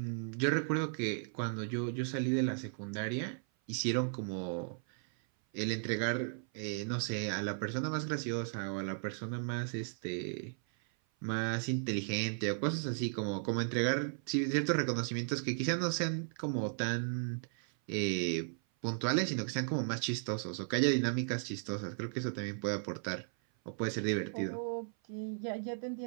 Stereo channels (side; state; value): left; silent; 54 dB below the other